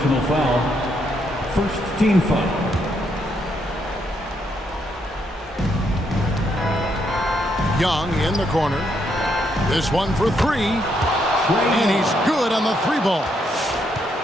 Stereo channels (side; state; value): both; normal; correlation 0.76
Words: foul. First team foul. Young in the corner. This one for 3. And he's good on the 3 ball.